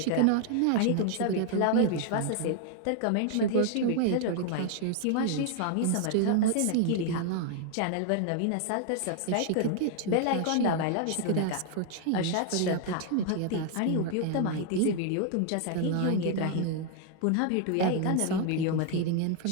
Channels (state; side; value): different; both; correlation 0.00